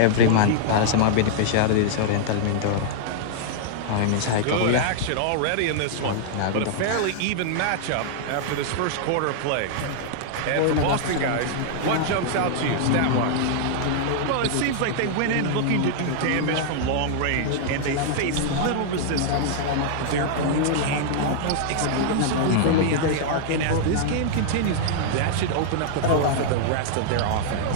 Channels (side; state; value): both; different; correlation -0.01